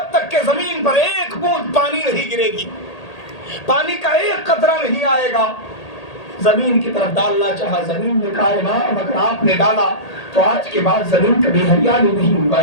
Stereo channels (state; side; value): late; right; 1.8 ms